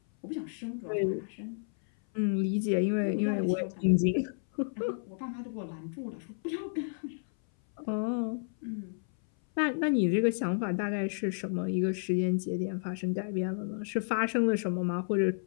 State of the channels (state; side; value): silent; right; 57 dB below the other